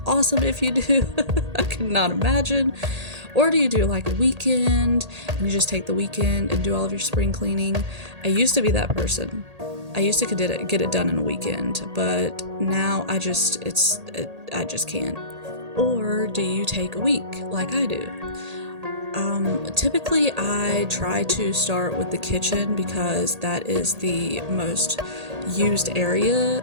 awesome if you do. I could not imagine. Or do you do like a weekend and you just take the weekend and do all of your spring cleaning? I used to be that person. I used to get it done in a weekend, but now I just can't. Or do you take a week like I do? Typically I try to start with the kitchen because that is the most used area,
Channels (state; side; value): late; left; 1.8 ms